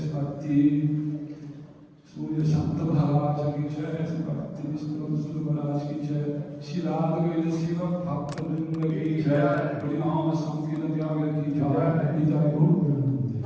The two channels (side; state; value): both; identical; correlation 1.00